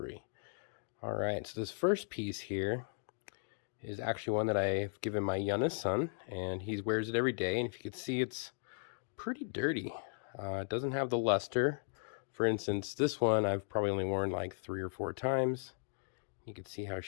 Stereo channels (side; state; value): right; silent; digital silence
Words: Alright, so this first piece here is actually one that I've given my youngest son, and he wears it every day. And if you could see, it's pretty dirty. It doesn't have the luster. For instance, this one I've probably only worn like 3 or 4 times. You can see how